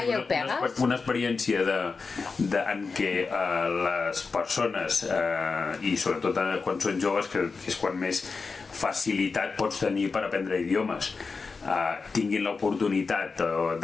pegues? Una experiència en què les persones, i sobretot quan són joves, que és quan més facilitat pots tenir per aprendre idiomes, tinguin l'oportunitat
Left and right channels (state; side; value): quieter; right; 4.6 dB